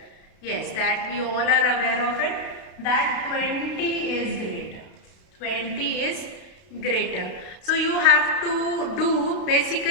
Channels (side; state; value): right; late; 32 ms